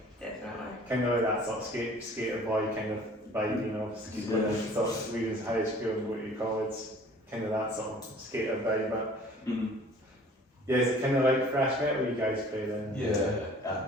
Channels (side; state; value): both; normal; correlation 0.50